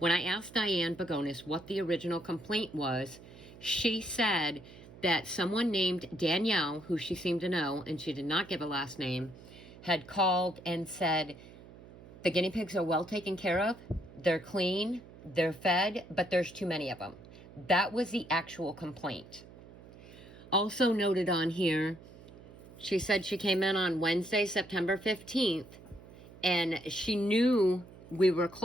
I asked Diane Begonis what the original complaint was, she said that someone named Danielle, who she seemed to know, and she did not give a last name, had called and said, the guinea pigs are well taken care of, they're clean, they're fed, but there's too many of them. That was the actual complaint. Also noted on here, she said she came in on Wednesday, September 15th, and she knew we were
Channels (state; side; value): noise; right; hum, 19 dB below the sound